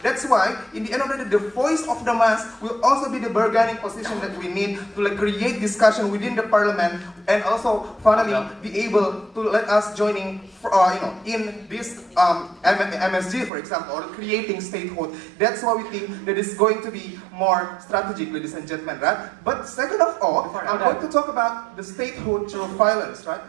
That's why, in the end of the day, the voice of the mass will also be the bargaining position that we need to create discussion within the parliament, and also finally be able to let us joining in this MSG, for example, or creating statehood. That's why we think that it's going to be more strategic, ladies and gentlemen, right? But second of all, I'm going to talk about the statehood through violence, right?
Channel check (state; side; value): drops out; left; at 13.5 s